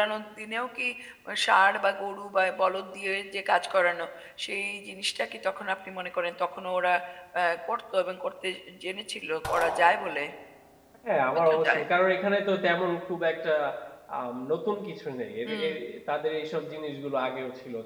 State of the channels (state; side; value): identical; both; correlation 1.00